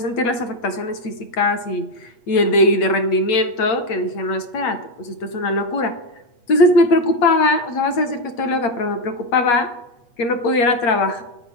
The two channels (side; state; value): right; late; 8.4 ms